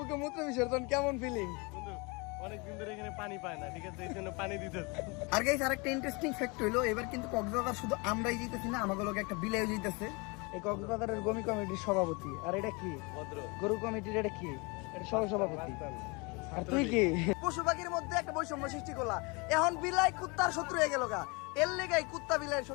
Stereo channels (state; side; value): quieter; right; 29.0 dB